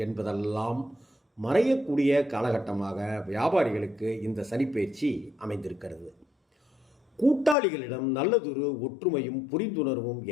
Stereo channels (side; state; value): right; drops out; at 7.6 s